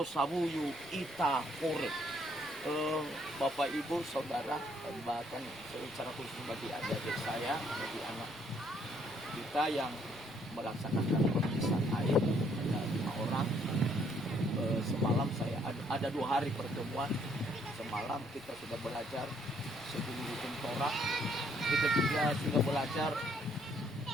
ita kore. Bapak Ibu Saudara bahkan secara khusus bagi adik saya bagi anak kita yang melaksanakan pemeriksaan air ada 5 orang. Semalam saya ada 2 hari pertemuan. Semalam kita sudah belajar sebelum Torah, kita juga sudah belajar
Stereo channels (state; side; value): noise; left; rumble, 24 dB below the sound